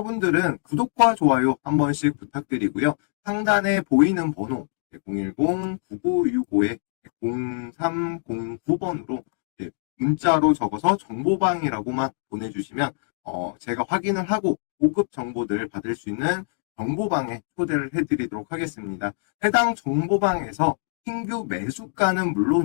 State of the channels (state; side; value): silent; right; 62 dB below the other